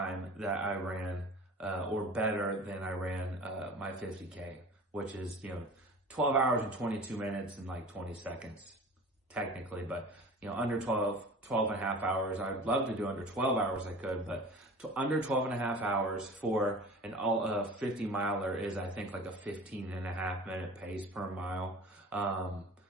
that I ran, or better than I ran, my 50K, which is, 12 hours and 22 minutes and like 20 seconds technically, but under 12 and a half hours. I'd love to do under 12 hours I could, but under 12 and a half hours for an 50 miler is, I think, like a 15 and a half minute pace per mile,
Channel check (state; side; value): normal; both; correlation 0.40